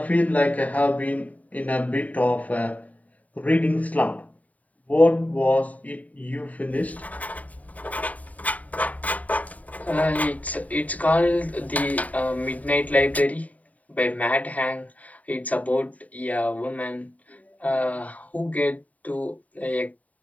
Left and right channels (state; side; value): late; right; 0.071 ms